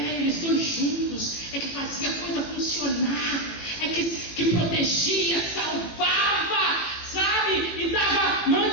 protegia, salvava, sabe? E dava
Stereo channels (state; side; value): late; right; 18 ms